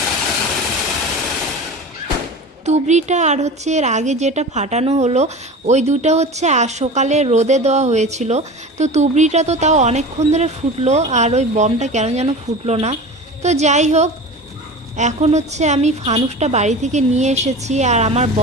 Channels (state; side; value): normal; both; correlation 0.33